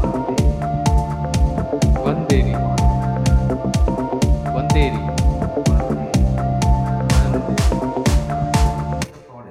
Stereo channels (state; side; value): identical; both; correlation 1.00